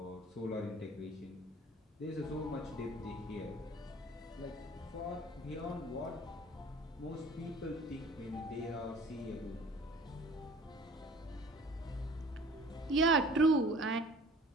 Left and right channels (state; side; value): normal; both; correlation 0.48